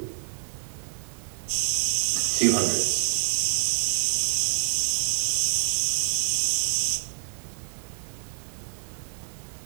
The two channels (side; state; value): left; silent; 56 dB below the other